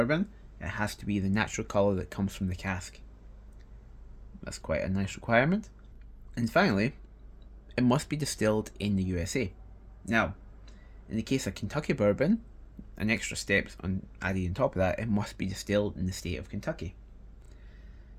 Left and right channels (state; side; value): identical; both; correlation 1.00